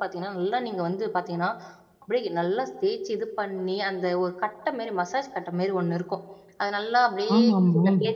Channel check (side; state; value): both; identical; correlation 1.00